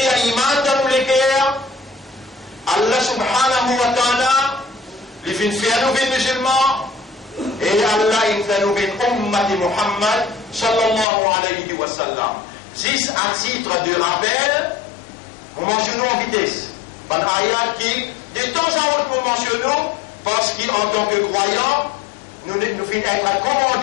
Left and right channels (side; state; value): right; drops out; at 11.1 s